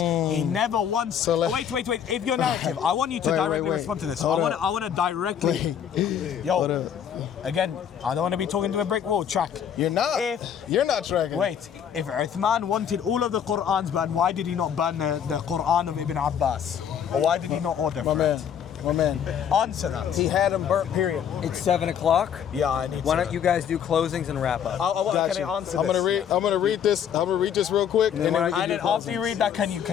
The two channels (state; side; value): quieter; right; 8.6 dB